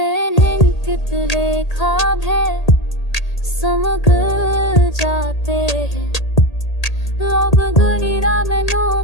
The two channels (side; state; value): right; late; 1.8 ms